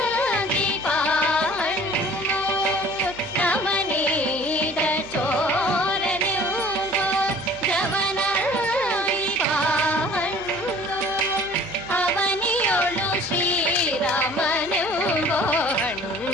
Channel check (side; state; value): both; normal; correlation 0.49